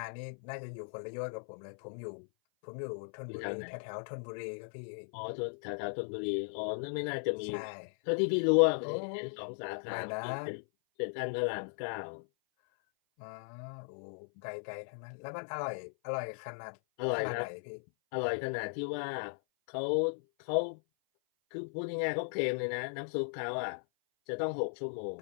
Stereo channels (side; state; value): right; silent; 53 dB below the other